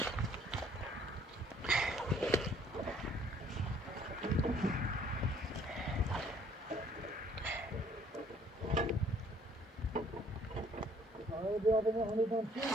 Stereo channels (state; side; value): normal; both; correlation 0.61